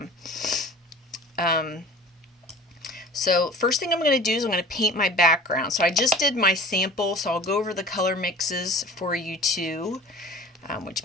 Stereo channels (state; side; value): normal; both; correlation 0.41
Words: So first thing I'm going to do is I'm going to paint my background. So I just did my sample, so I'll go over the color mixes for you too,